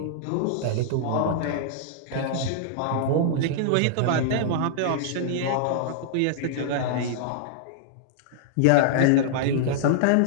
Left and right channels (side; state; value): both; different; correlation -0.01